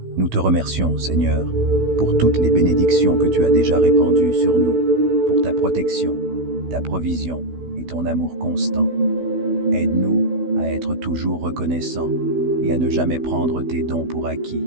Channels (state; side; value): late; left; 16 ms